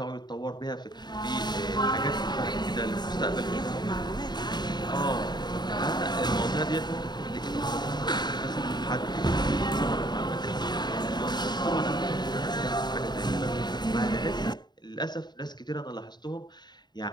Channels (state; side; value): late; right; 0.21 ms